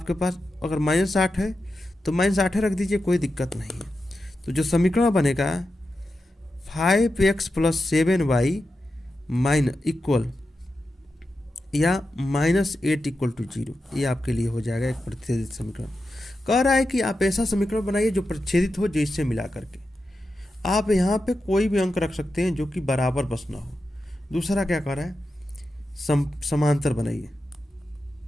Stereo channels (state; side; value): normal; both; correlation 0.90